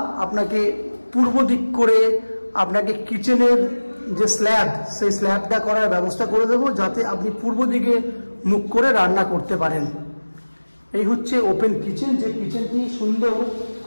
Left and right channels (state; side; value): inverted; both; correlation -1.00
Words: আপনাকে পূর্ব দিক করে আপনাকে কিচেনের যে স্ল্যাব, সেই স্ল্যাবটা করার ব্যবস্থা করে দেবো, যাতে আপনি পূর্ব দিকে মুখ করে রান্না করতে পারেন। এই হচ্ছে ওপেন কিচেন। যে কিচেনটি সুন্দর